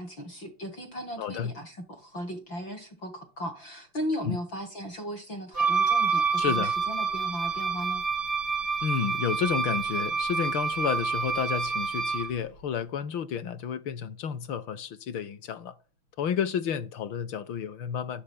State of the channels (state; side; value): late; right; 5.9 ms